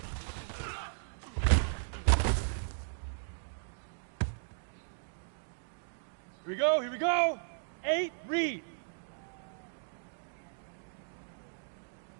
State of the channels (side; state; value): left; silent; digital silence